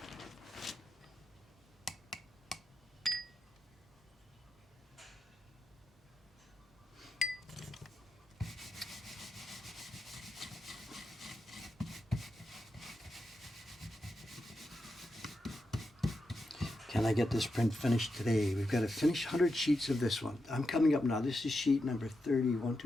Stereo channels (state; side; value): normal; both; correlation 0.87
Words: Can I get this print finished today? We've got to finish 100 sheets of this one. I'm coming up now. This is sheet number 30. 1,